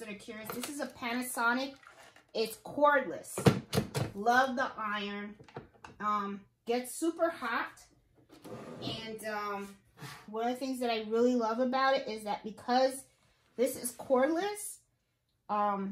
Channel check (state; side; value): identical; both; correlation 1.00